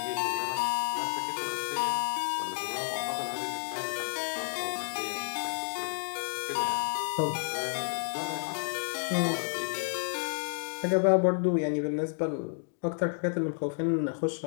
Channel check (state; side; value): silent; right; digital silence